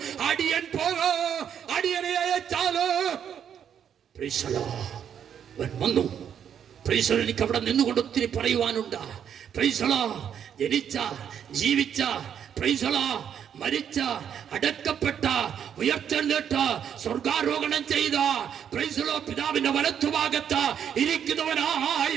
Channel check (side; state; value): left; quieter; 8.6 dB